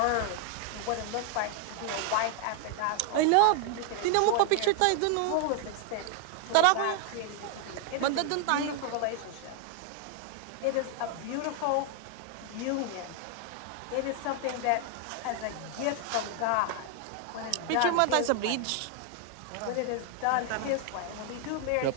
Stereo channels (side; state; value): both; different; correlation 0.00